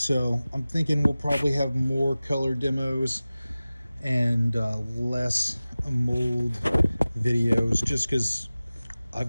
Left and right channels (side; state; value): both; inverted; correlation -0.97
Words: I'm thinking we'll probably have more color demos and less mold videos, just because I've